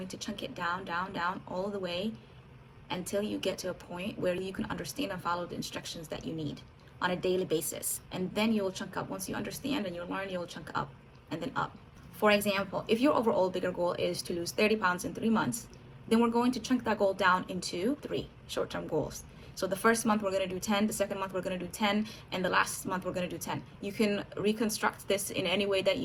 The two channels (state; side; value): identical; both; correlation 1.00